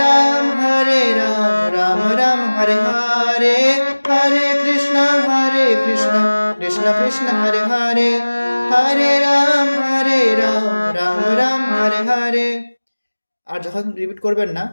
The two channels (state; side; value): inverted; both; correlation -1.00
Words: রাম রাম রাম হরে হরে, হরে কৃষ্ণ কৃষ্ণ হরে হরে, হরে রাম রাম রাম হরে হরে। আর যখন রিপিট করবেন না